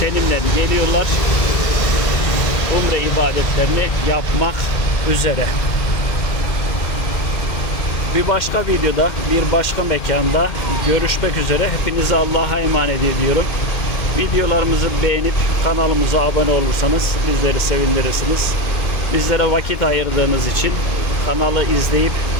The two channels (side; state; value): right; late; 2.1 ms